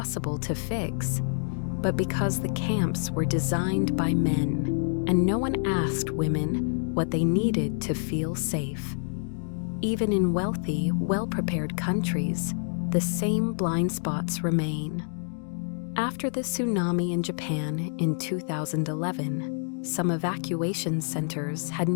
to fix, but because the camps were designed by men, and no one asked women what they needed to feel safe. Even in wealthy, well-prepared countries, the same blind spots remain. After the tsunami in Japan in 2011, some evacuation centers had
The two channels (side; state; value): right; silent; digital silence